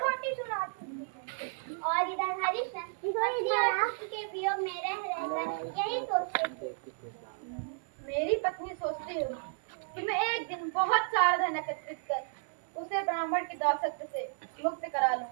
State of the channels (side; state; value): left; silent; digital silence